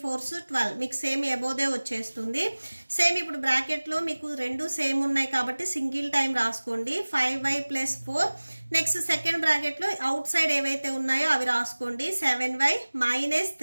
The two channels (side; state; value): both; inverted; correlation -1.00